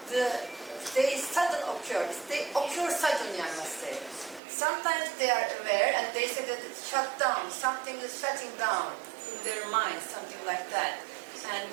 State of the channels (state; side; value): drops out; left; at 4.4 s